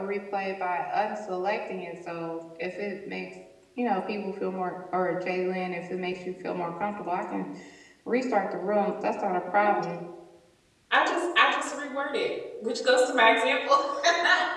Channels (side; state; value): both; identical; correlation 1.00